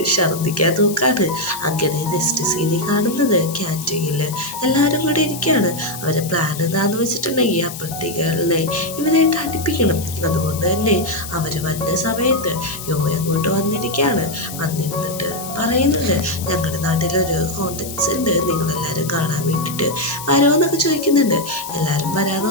ഛർദ്ദിക്കാൻ നോക്കാണ്. അങ്ങനെ നെക്സ്റ്റ് സീനിൽ കാണുന്നത് ക്യാൻറ്റീനിൽ എല്ലാവരും കൂടി ഇരിക്കുകയാണ്. അവരെ പ്ലാൻ എന്താണെന്ന് വെച്ചിട്ടുണ്ടെങ്കിൽ അപ്പുറത്തേക്കുകളെ ഇവരായിട്ട് അടുപ്പിക്കണം. അതുകൊണ്ട് തന്നെ അവർ വന്ന സമയത്ത് യോ അങ്ങോട്ട് വന്നിരിക്കുകയാണ്. വന്നിരുന്നിട്ട് പറയുന്നുണ്ട് ഞങ്ങളുടെ നാട്ടിലൊരു കോൺടാക്ട്സ് ഉണ്ട്, നിങ്ങളെല്ലാവരും കാണാൻ വേണ്ടിയിട്ട് വരുമോന്നൊക്കെ ചോദിക്കുന്നുണ്ട്. എല്ലാവരും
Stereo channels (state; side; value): noise; left; hiss, 11 dB below the sound